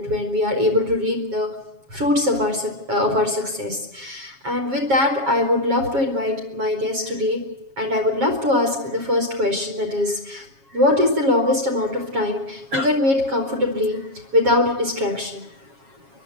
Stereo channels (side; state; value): left; late; 7.3 ms